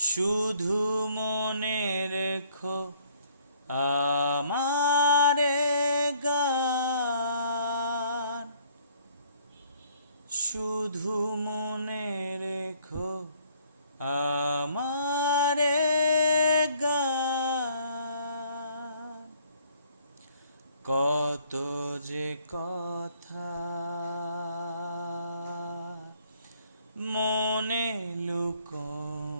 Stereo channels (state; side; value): inverted; both; correlation -0.62